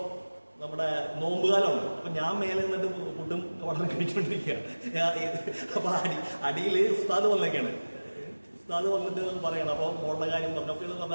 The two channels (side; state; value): both; inverted; correlation -1.00